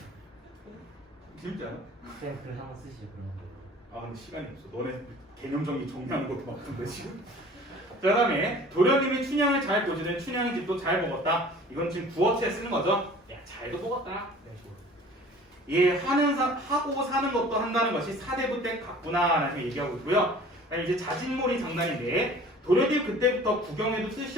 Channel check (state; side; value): normal; both; correlation 0.47